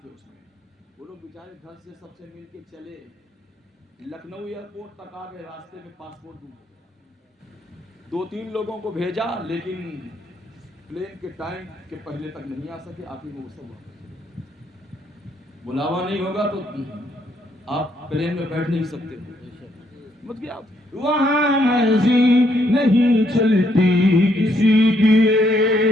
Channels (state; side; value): normal; both; correlation 0.72